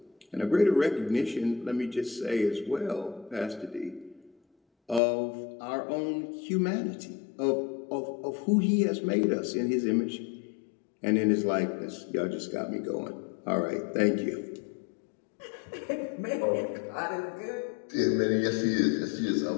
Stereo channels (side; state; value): right; drops out; at 5.0 s